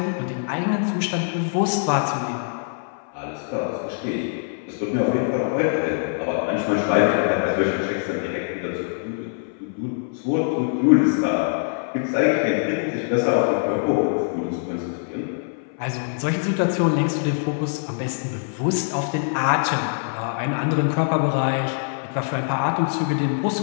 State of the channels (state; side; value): silent; right; 60 dB below the other